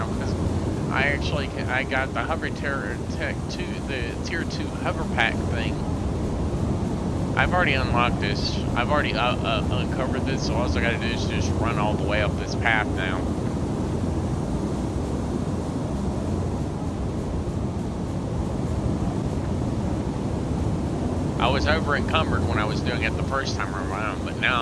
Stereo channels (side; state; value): both; identical; correlation 1.00